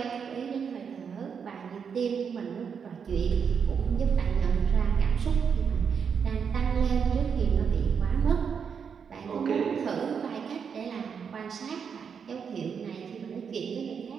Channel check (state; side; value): quieter; left; 6.7 dB